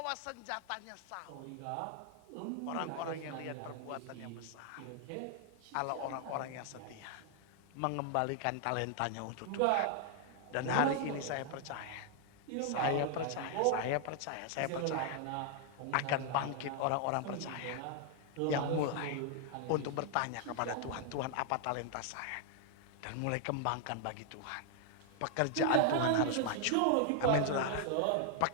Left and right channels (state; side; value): different; both; correlation 0.00